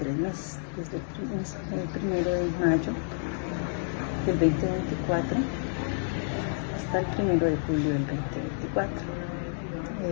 meses, desde el 1 de mayo del 2024 hasta el 1 de julio del 2024.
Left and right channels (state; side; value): silent; right; digital silence